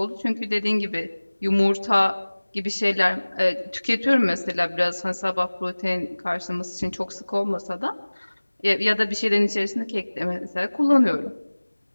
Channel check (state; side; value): inverted; both; correlation -1.00